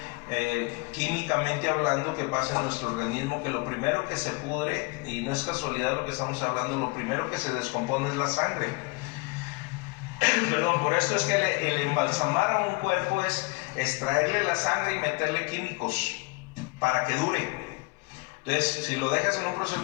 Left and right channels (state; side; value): quieter; right; 27.1 dB